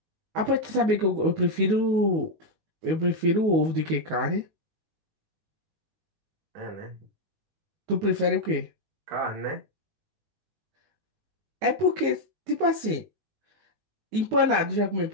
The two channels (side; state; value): left; late; 19 ms